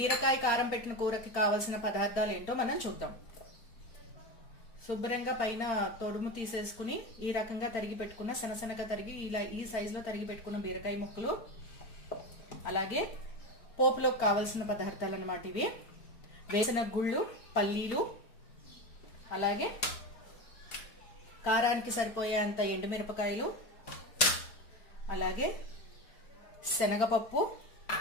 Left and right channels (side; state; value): right; late; 4.4 ms